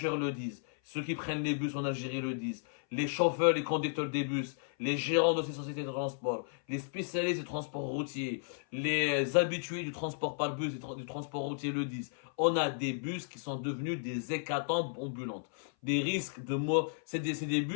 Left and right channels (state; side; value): silent; right; 55 dB below the other